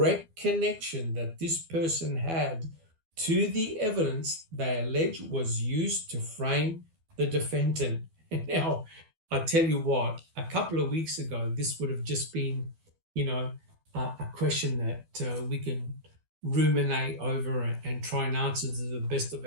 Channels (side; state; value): left; late; 12 ms